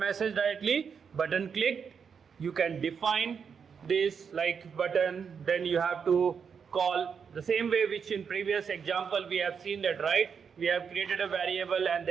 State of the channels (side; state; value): left; quieter; 6.5 dB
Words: directly. Button clicked, you can define this like button, then you have to call the same way which in previous example we have seen that, right? We have created a variable and